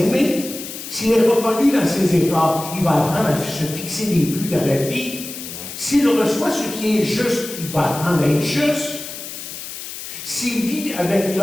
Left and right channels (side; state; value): left; noise; hiss, 10 dB below the sound